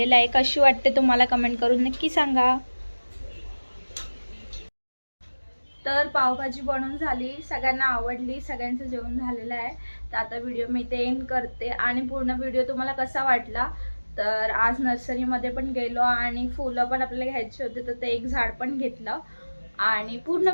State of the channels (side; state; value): both; inverted; correlation -1.00